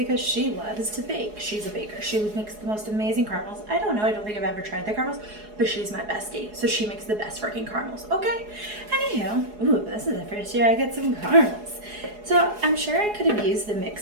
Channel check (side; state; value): left; late; 4.8 ms